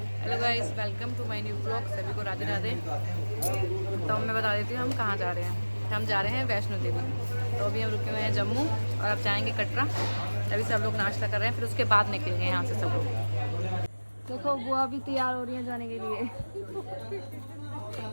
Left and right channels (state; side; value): inverted; both; correlation -1.00